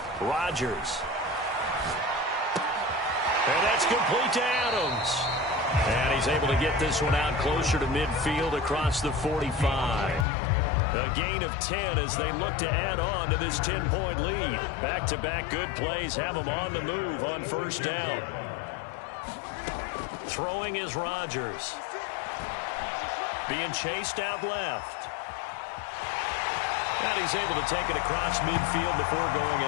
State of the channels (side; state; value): right; drops out; at 10.2 s